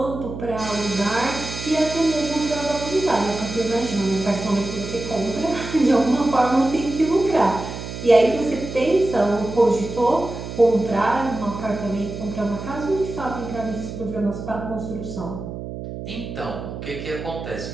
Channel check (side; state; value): right; noise; hum, 8 dB below the sound